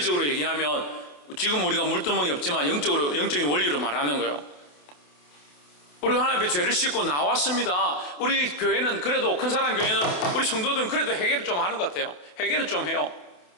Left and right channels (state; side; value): late; right; 28 ms